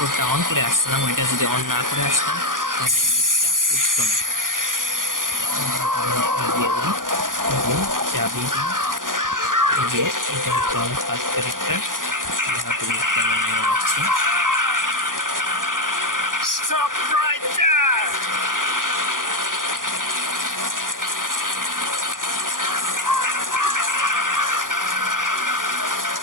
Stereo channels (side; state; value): left; late; 0.89 ms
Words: অন করে আসছিলাম, ওইটা যদি অন না করে আসতাম তাহলে লিফটটা উঠতো না। দিয়ে দিই চাবি দিয়ে, এটা হচ্ছে আমার first character. Stop right there.